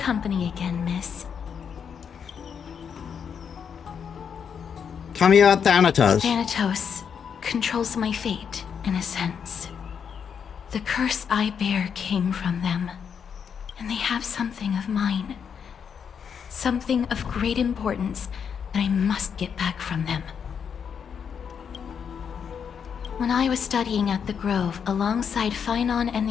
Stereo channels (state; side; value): quieter; right; 7.2 dB